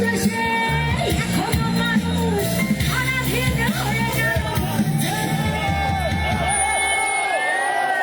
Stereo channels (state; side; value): identical; both; correlation 1.00